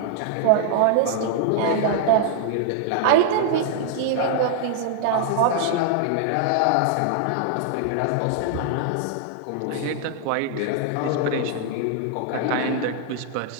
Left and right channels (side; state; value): both; different; correlation -0.01